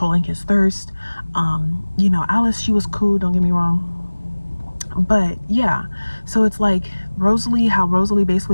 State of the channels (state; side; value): inverted; both; correlation -1.00